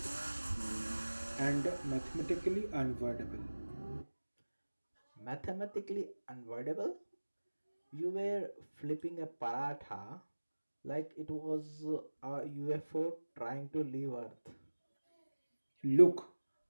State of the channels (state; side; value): inverted; both; correlation -1.00